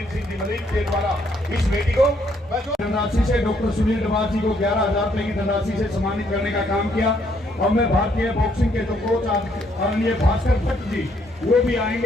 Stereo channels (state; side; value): normal; both; correlation 0.70